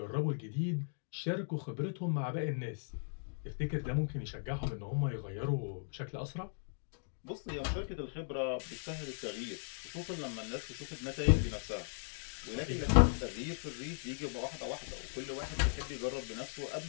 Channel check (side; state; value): right; silent; digital silence